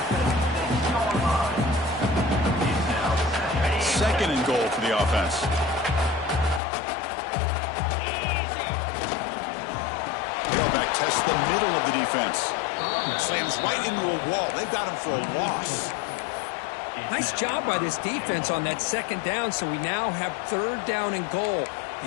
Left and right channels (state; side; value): drops out; right; at 6.6 s